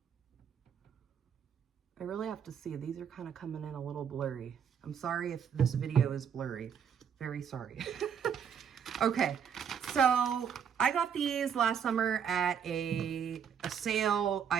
I really have to see, these are kind of coming in a little blurry. I'm sorry if this video is blurry. Very sorry. Okay, so I got these last summer at a sale.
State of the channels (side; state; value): left; quieter; 7.7 dB